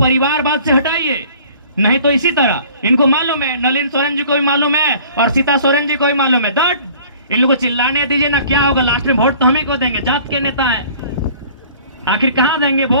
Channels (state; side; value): inverted; both; correlation -0.50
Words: से हटाइए, नहीं तो इसी तरह इनको मालूम है, नलिन सोरेन जी को भी मालूम है और सीता सोरेन जी को भी मालूम है, दैट इन लोगों को चिल्लाने दीजिए ना, क्या होगा, लास्ट में वोट तो हम ही को देंगे, जात के नेता हैं, आखिर कहां देंगे